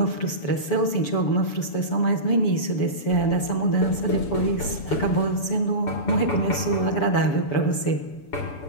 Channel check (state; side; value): late; right; 7.0 ms